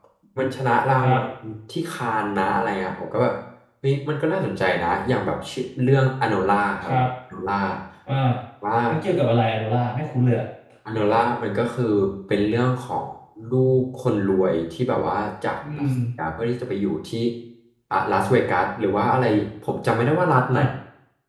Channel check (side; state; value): both; identical; correlation 1.00